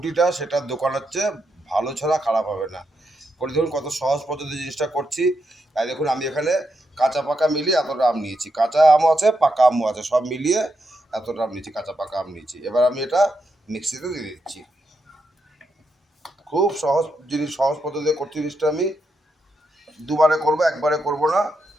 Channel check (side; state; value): both; normal; correlation 0.83